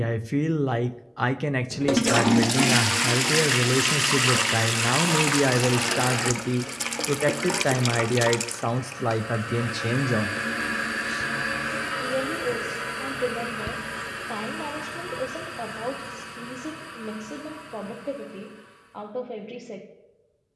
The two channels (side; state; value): both; identical; correlation 1.00